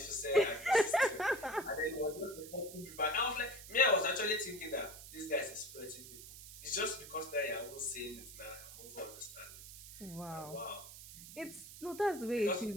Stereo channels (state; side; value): noise; right; hiss, 14 dB below the sound